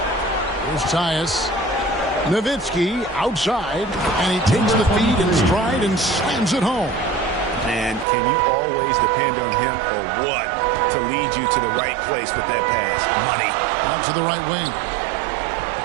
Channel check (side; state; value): left; drops out; at 8.1 s